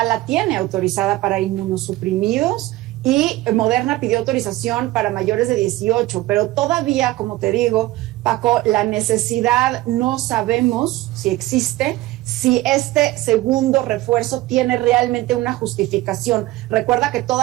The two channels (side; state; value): left; quieter; 17.5 dB